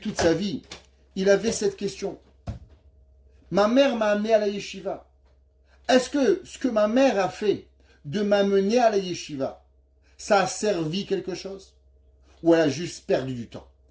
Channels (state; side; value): identical; both; correlation 1.00